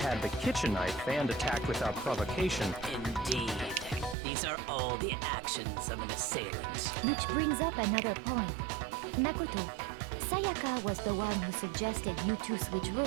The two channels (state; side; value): drops out; left; at 4.2 s